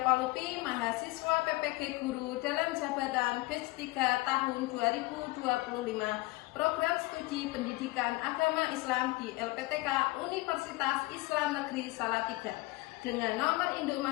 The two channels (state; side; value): quieter; right; 21.5 dB